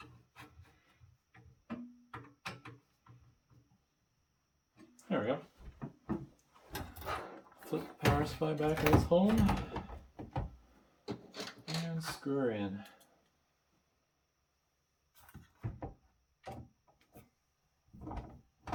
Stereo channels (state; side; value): identical; both; correlation 1.00